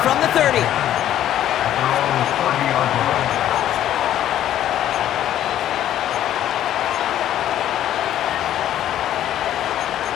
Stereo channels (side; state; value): right; quieter; 11.8 dB